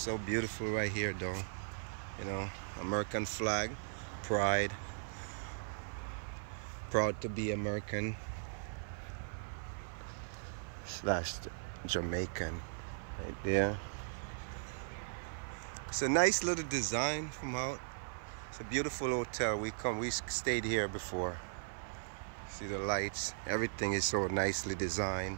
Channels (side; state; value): left; silent; 52 dB below the other